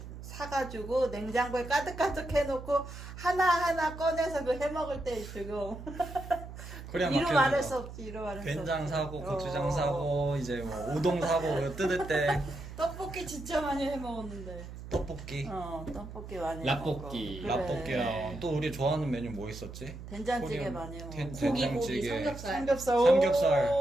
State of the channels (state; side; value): noise; right; hum, 12 dB below the sound